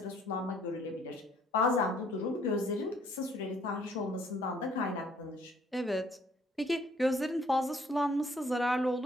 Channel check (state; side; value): normal; both; correlation 0.62